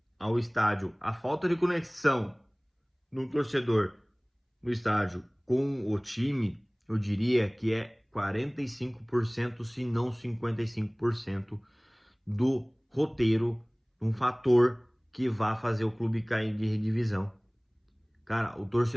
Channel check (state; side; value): identical; both; correlation 1.00